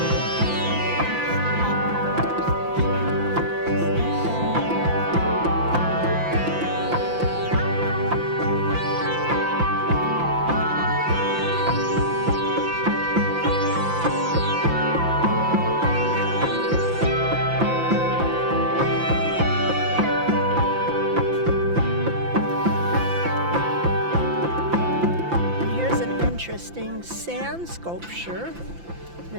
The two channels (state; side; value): late; left; 5.9 ms